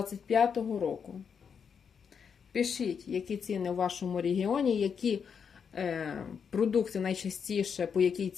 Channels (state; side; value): quieter; right; 6.7 dB